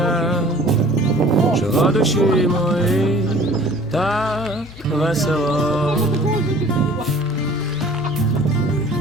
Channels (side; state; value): both; normal; correlation 0.49